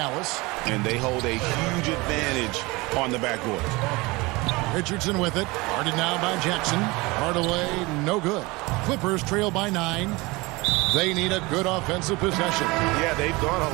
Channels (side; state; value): left; quieter; 23.7 dB